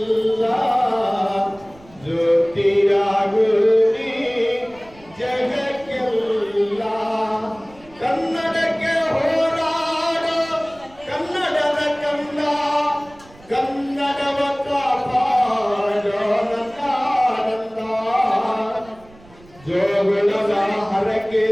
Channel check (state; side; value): noise; right; rumble, 25 dB below the sound